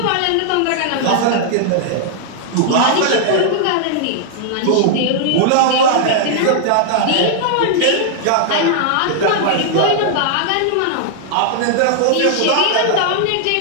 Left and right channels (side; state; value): both; different; correlation -0.01